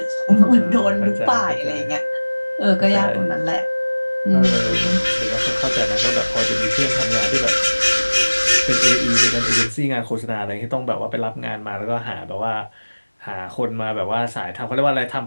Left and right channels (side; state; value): both; inverted; correlation -1.00